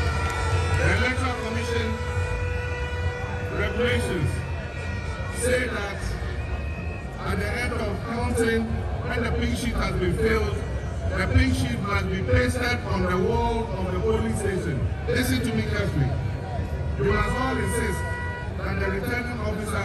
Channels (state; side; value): identical; both; correlation 1.00